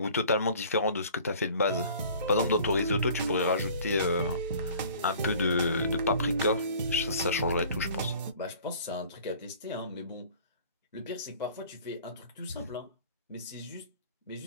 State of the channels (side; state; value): both; inverted; correlation -0.49